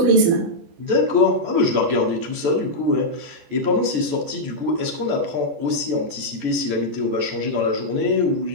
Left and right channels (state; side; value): late; left; 14 ms